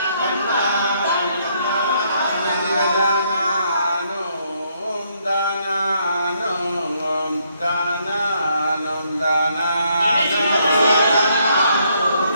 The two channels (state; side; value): inverted; both; correlation -0.72